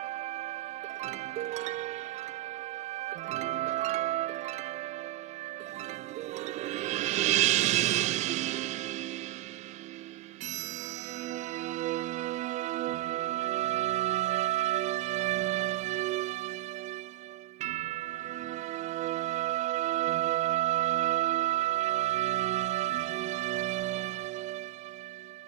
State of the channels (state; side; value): quieter; left; 16.0 dB